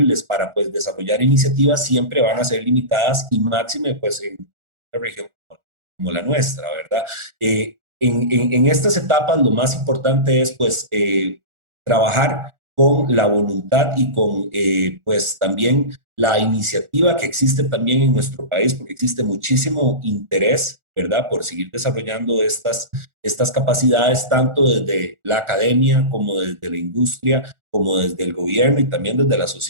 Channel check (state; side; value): late; left; 1.4 ms